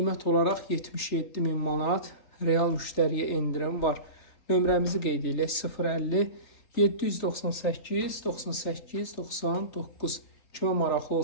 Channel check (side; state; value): right; late; 3.6 ms